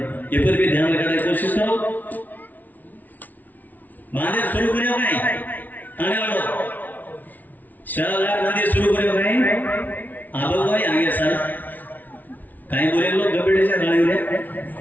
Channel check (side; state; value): right; late; 0.080 ms